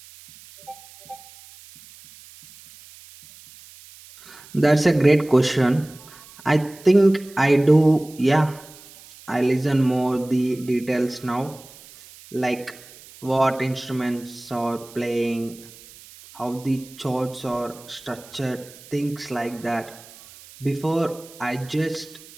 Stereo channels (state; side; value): noise; right; hiss, 21 dB below the sound